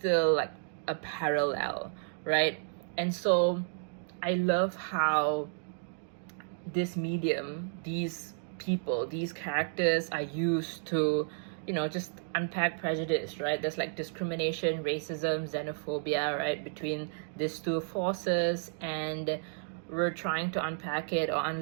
like a parallel, right? And so I love how this medium, these people, these characters are used to, you know, just unpack prejudice, right? There's like discrimination, racism, xenophobia, right, between these two forces, and we're trying to unpack it or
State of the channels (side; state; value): left; silent; digital silence